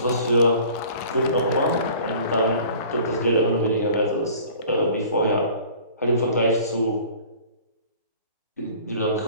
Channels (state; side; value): inverted; both; correlation -0.47